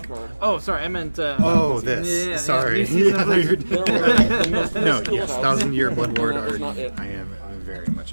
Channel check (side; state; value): both; inverted; correlation -1.00